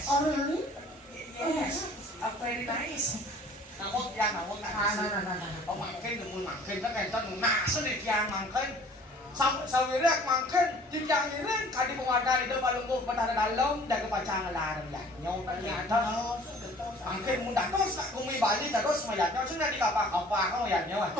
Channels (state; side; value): normal; both; correlation 0.51